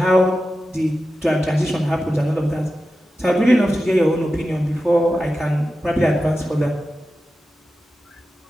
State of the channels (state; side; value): normal; both; correlation 0.92